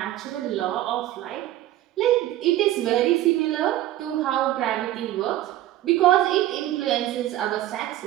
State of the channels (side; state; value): left; quieter; 14.2 dB